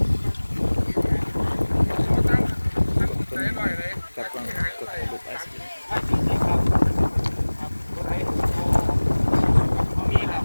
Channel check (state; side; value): inverted; both; correlation -1.00